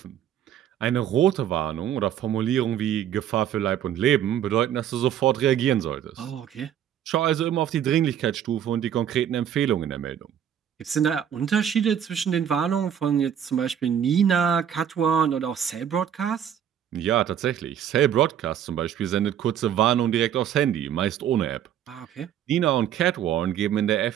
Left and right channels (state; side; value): quieter; left; 9.7 dB